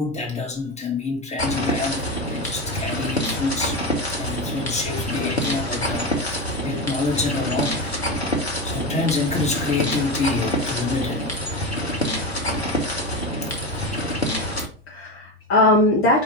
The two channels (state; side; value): normal; both; correlation 0.18